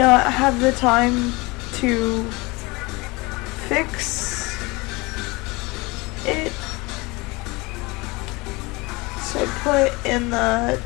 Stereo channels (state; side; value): quieter; right; 24.5 dB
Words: have the time to fix it. So I put in the